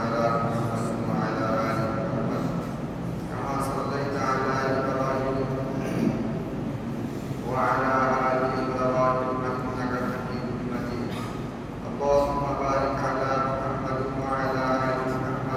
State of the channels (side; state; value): both; identical; correlation 1.00